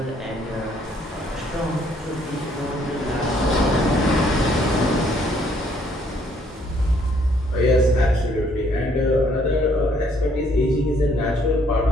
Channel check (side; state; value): both; normal; correlation 0.66